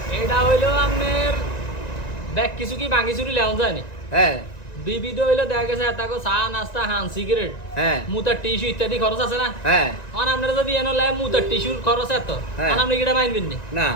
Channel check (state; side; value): late; right; 1.9 ms